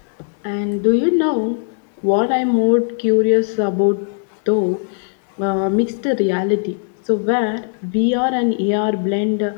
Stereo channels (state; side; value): silent; right; 59 dB below the other